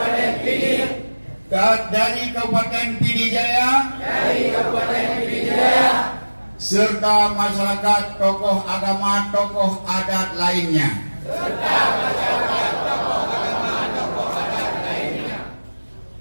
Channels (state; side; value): inverted; both; correlation -1.00